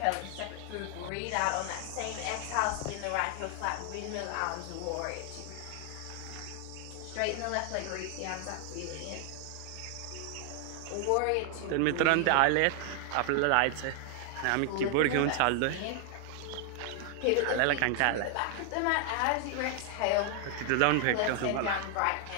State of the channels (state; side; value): different; both; correlation 0.00